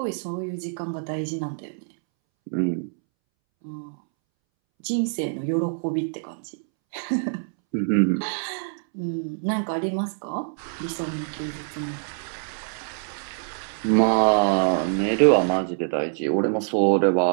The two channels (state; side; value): silent; left; 62 dB below the other